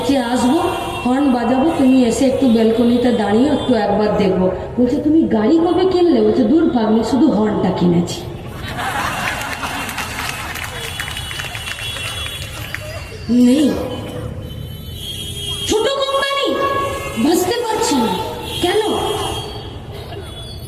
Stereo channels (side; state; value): both; identical; correlation 1.00